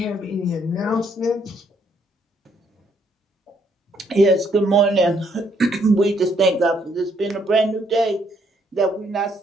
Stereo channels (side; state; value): both; normal; correlation 0.70